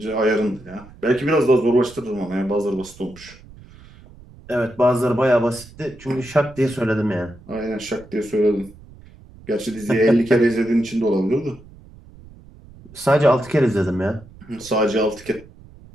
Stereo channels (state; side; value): noise; right; rumble, 21 dB below the sound